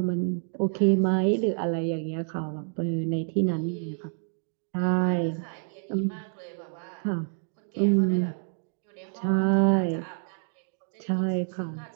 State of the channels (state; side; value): silent; left; 59 dB below the other